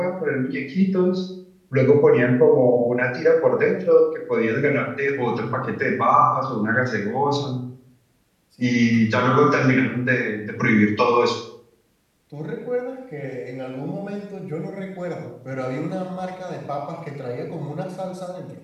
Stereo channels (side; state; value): both; identical; correlation 1.00